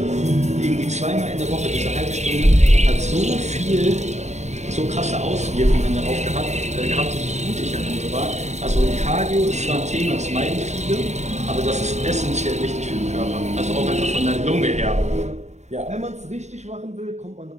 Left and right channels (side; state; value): left; late; 0.33 ms